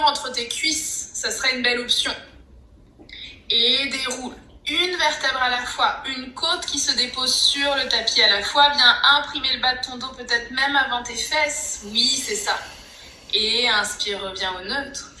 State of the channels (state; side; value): identical; both; correlation 1.00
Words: entre tes cuisses. Ça serait une belle option. Et déroule. Une vertèbre à la fois, une côte qui se dépose sur le tapis à la fois. Viens imprimer le bas de ton dos, peut-être même avant tes fesses. Oui, c'est ça. Et inspire, reviens au neutre.